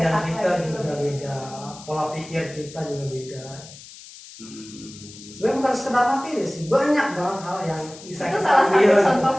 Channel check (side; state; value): left; noise; hiss, 17 dB below the sound